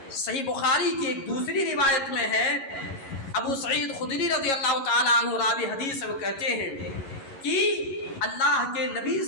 صحیح بخاری کی ایک دوسری روایت میں ہے، ابو سعید خدری رضی اللہ تعالیٰ عنہ راوی حدیث وہ کہتے ہیں کہ اللہ کے نبی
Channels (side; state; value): right; late; 11 ms